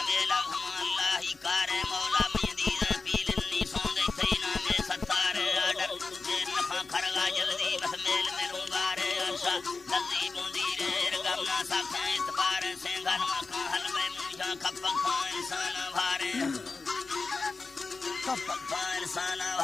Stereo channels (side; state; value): right; quieter; 4.1 dB